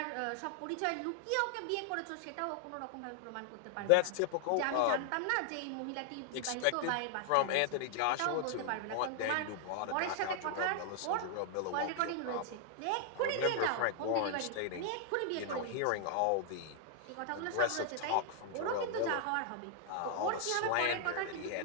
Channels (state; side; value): different; both; correlation 0.00